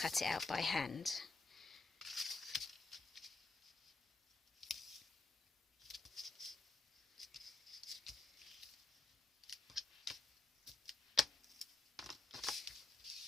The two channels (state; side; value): quieter; right; 3.0 dB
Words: it out by hand.